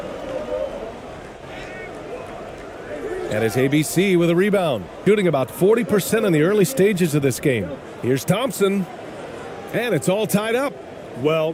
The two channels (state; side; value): identical; both; correlation 1.00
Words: And it's ABC with a rebound. Shooting about 40% in the early stages of this game. Here's Thompson. And it's all tied up.